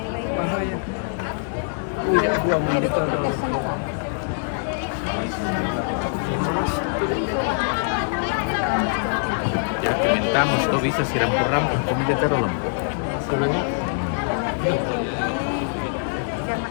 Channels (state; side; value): silent; right; 63 dB below the other